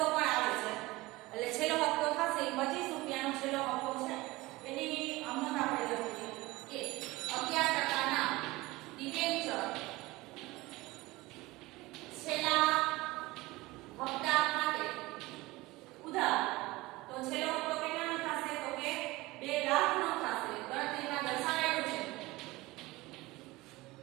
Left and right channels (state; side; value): quieter; left; 20.5 dB